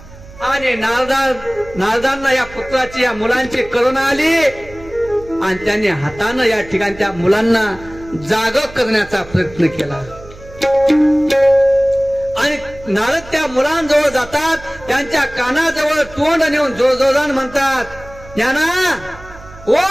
आणि नारदांना या पुत्राची या मुलांची करुणा आली आणि त्यांनी हातानं या ठिकाणी त्या मुलांना जाग करण्याचा प्रयत्न केला. आणि नारद त्या मुलांजवळ जातात. त्यांच्या कानाजवळ तोंड नेऊन जोरजोरान म्हणतात, ज्ञाना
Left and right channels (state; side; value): noise; right; hum, 19 dB below the sound